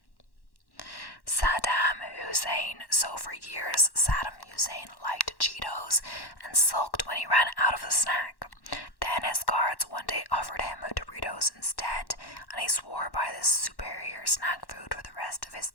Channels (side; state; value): right; late; 1.1 ms